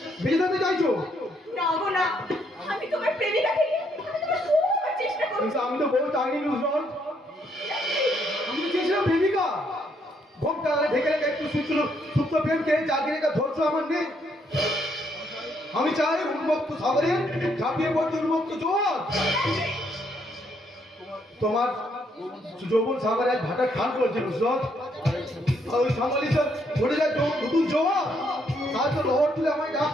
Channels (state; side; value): normal; both; correlation 0.72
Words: বেঁচে থাকতে চাইছো। না গো না, আমি তোমার প্রেমিকা থেকে আমি তোমার খুব চেষ্টা করছি। কিন্তু আমি তো বউ চাইনি নুসরত, আমি তো চেয়েছিলাম প্রেমিকা। ঘোমটা ঢেকে রেখে একটু সুপ্ত প্রেমকে জাগিয়ে রেখে ধৈর্য আমার নেই। আমি চাই উন্মুক্ত সাগরে ঝাঁপিয়ে পড়তে উন্মুক্ত জোয়ার। তোমার যৌবন সাগরে এক ভাটা খান করছে নুসরত, আর ওই সামালি সব ঘুরে যায় নতুন জোয়ার, তার তো লহর তুলে আমায়